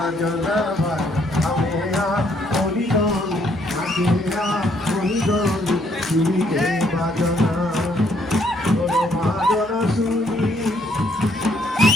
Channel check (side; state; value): right; noise; hum, 24 dB below the sound